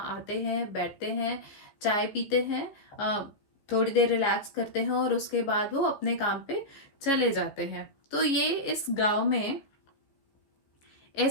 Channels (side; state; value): right; late; 14 ms